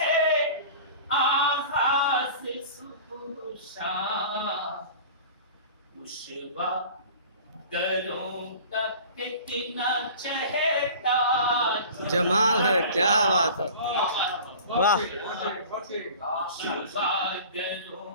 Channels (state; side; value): inverted; both; correlation -0.40